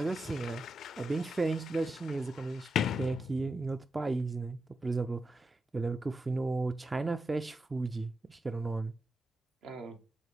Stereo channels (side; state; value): both; normal; correlation 0.87